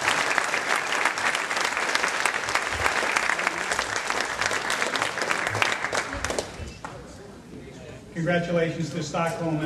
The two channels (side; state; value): both; identical; correlation 1.00